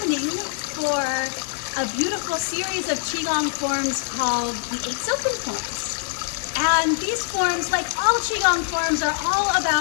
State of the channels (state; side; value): silent; right; 63 dB below the other